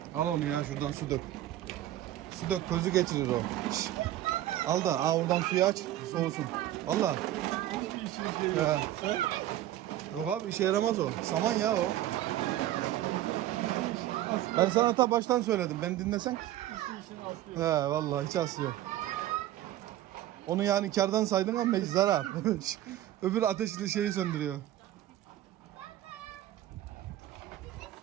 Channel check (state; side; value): quieter; left; 13.5 dB